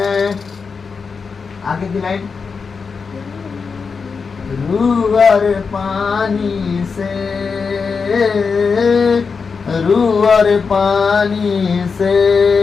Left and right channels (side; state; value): right; quieter; 5.2 dB